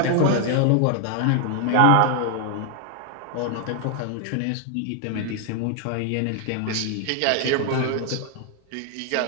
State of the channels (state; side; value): different; both; correlation 0.00